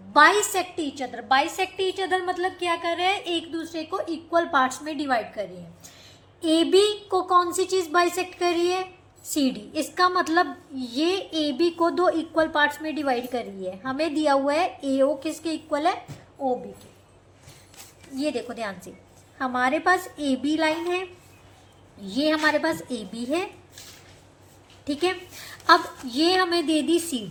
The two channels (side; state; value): both; identical; correlation 1.00